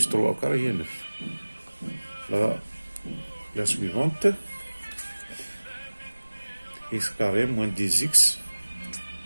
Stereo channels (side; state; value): both; inverted; correlation -1.00